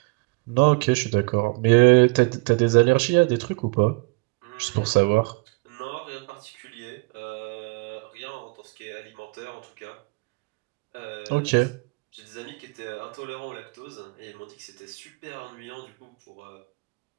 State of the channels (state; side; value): quieter; left; 29.2 dB